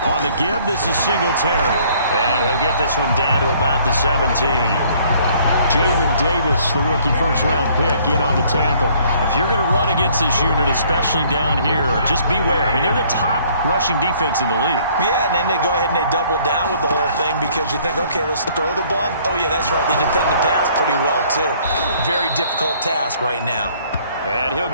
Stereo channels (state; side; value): inverted; both; correlation -0.60